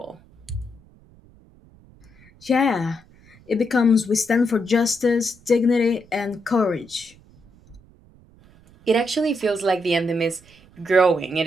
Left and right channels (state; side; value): noise; right; rumble, 27 dB below the sound